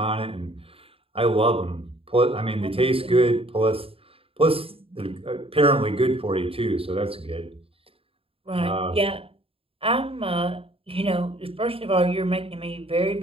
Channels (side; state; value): left; late; 0.27 ms